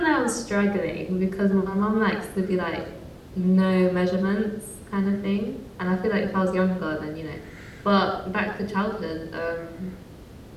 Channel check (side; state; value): both; identical; correlation 1.00